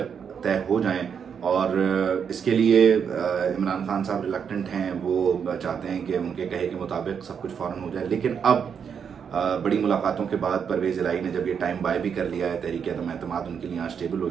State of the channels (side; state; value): left; quieter; 7.1 dB